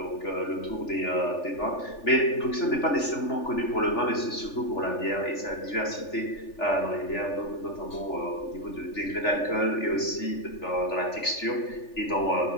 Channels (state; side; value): late; right; 3.4 ms